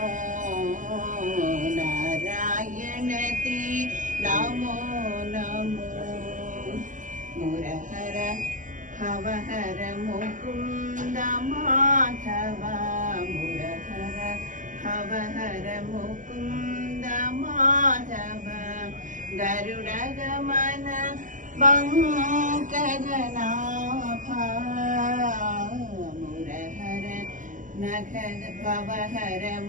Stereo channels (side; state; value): left; late; 0.37 ms